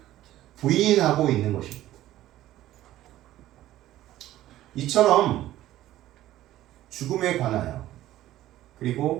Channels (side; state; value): left; quieter; 14.2 dB